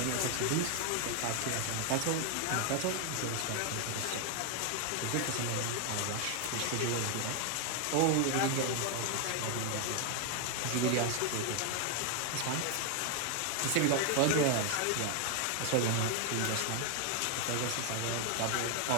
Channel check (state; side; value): different; both; correlation 0.01